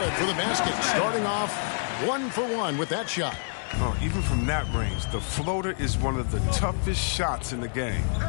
for the basket. Starting off 1 for 1 with that shot. Oh, even from that range, the floater is one of the toughest shots in the game.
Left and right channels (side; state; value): right; silent; 58 dB below the other